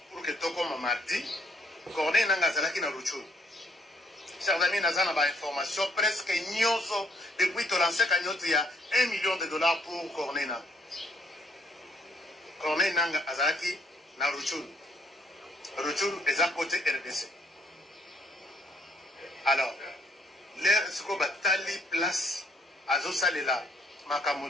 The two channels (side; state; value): both; normal; correlation 0.68